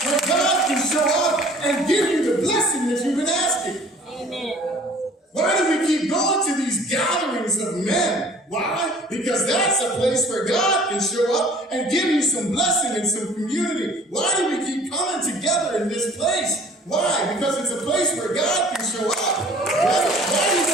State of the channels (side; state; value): both; normal; correlation 0.51